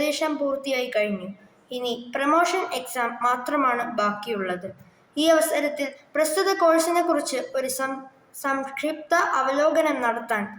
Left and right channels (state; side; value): identical; both; correlation 1.00